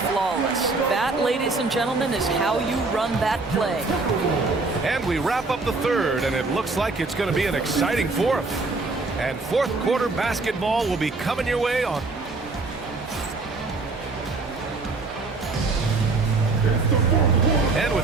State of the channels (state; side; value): quieter; left; 3.7 dB